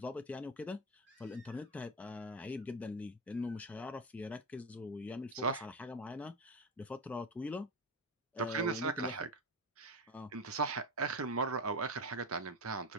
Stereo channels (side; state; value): both; normal; correlation 0.17